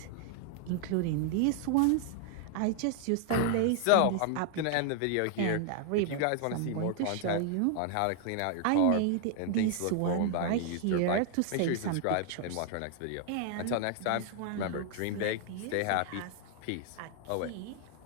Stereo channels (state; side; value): different; both; correlation 0.00